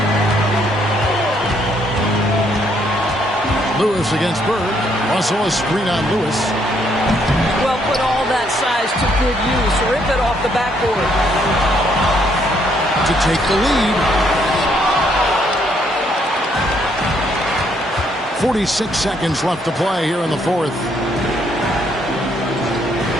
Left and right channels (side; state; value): both; normal; correlation 0.70